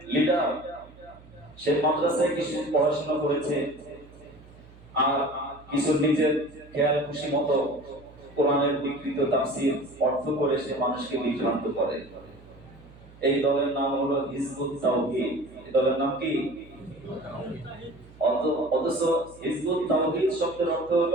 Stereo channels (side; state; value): right; noise; hum, 22 dB below the sound